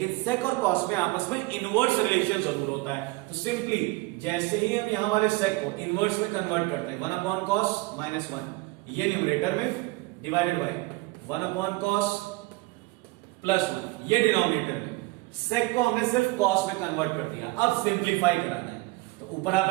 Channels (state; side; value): quieter; left; 22.3 dB